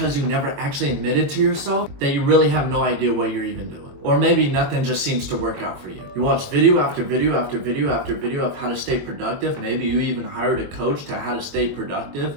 you never actually admitted to yourself that you really have no idea what you're even doing. Or maybe nothing just seems to work out for you. You watch video after video after video after video of how to stay productive. Maybe you even hired a coach to how to stay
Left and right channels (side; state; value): left; late; 22 ms